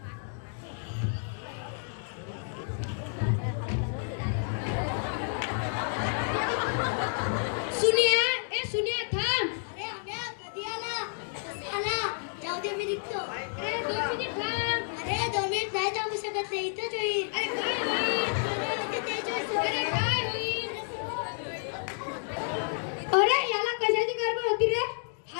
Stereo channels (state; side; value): silent; right; 58 dB below the other